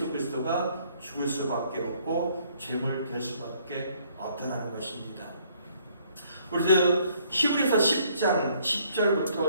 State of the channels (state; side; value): inverted; both; correlation -0.65